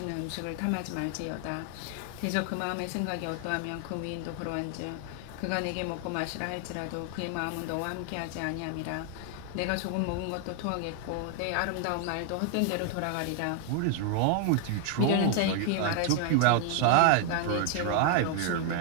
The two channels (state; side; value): different; both; correlation 0.00